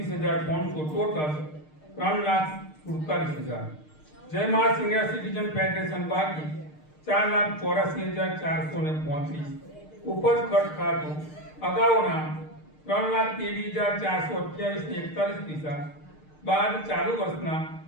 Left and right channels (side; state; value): right; late; 6.6 ms